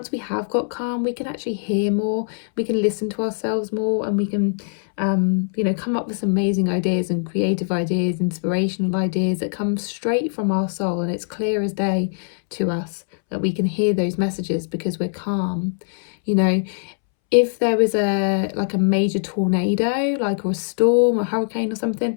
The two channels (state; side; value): silent; right; 64 dB below the other